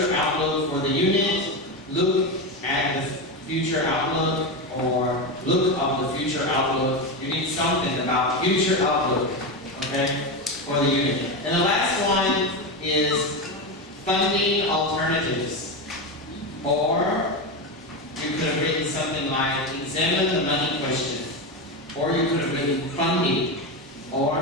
outlook for the unit, look at the future outlook, or look up the future outlook. You need something about future outlook, okay, for the unit. And the last one is funding alternatives. Or you could have written something like examine the money question. Or you could have written funding or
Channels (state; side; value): normal; both; correlation 0.15